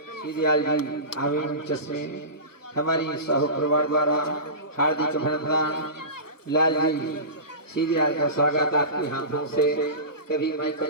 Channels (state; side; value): late; right; 1.1 ms